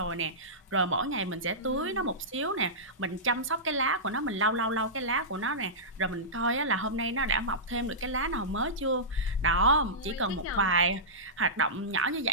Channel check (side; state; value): both; normal; correlation -0.16